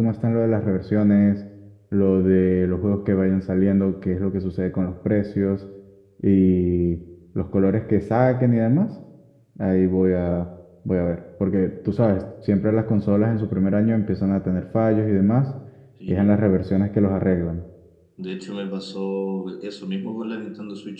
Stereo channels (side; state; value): both; identical; correlation 1.00